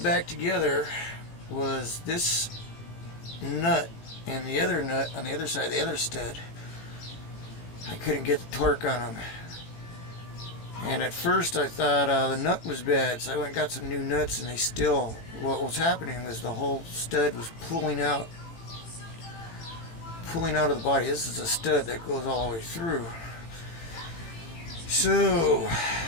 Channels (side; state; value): right; late; 18 ms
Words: together was this nut and the other nut on the other side, the other stud. I couldn't get the torque on them. And at first I thought the nut was bad, so I went and got some new nuts, and they still, what was happening was the whole stud was pulling out of the body. This is a stud that goes all the way through. So